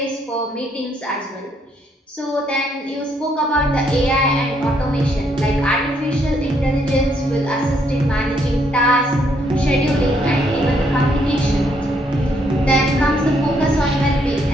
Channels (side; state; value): both; normal; correlation 0.72